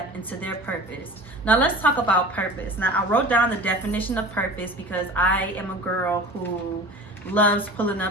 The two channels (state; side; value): normal; both; correlation 0.38